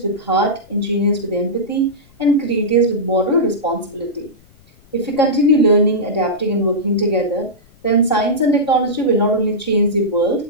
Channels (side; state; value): left; noise; rumble, 28 dB below the sound